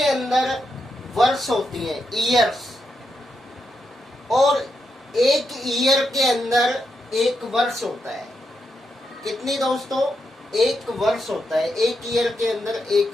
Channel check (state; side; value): normal; both; correlation 0.83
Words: अंदर वर्ष होती है, ईयर्स, और एक ईयर के अंदर एक वर्ष होता है। कितनी दोस्तों? एक वर्ष होता है। एक ईयर के अंदर